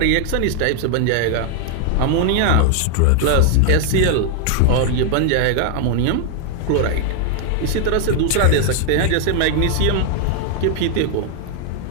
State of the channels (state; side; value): different; both; correlation 0.00